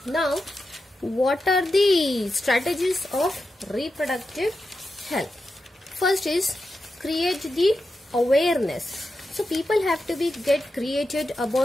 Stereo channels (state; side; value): normal; both; correlation 0.89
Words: Now, what are the strategies of reproductive health? First is create the awareness. So people have to get created